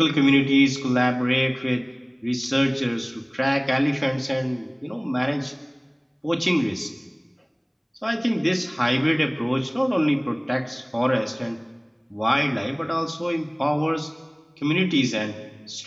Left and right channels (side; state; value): both; identical; correlation 1.00